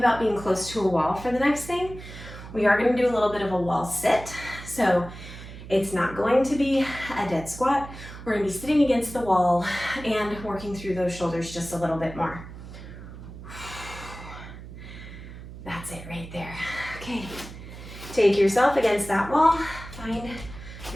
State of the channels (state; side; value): noise; right; hum, 13 dB below the sound